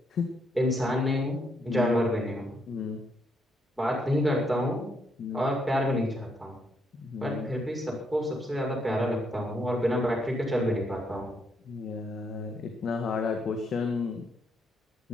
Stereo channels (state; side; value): normal; both; correlation 0.75